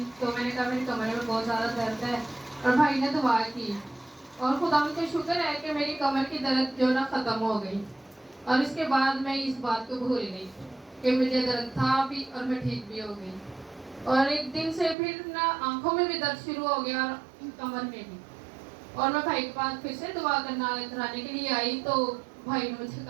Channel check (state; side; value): drops out; left; at 15.0 s